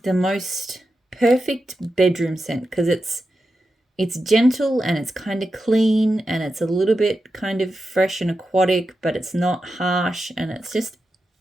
the most perfect bedroom scent, because it's gentle and it's kind of clean and it's a little bit kind of fresh and aquatic, but it's not harsh, and it's just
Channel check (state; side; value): normal; both; correlation 0.90